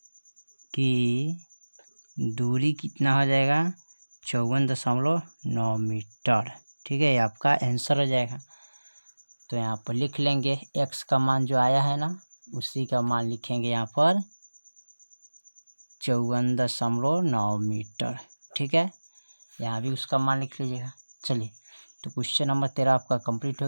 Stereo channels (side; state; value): both; inverted; correlation -1.00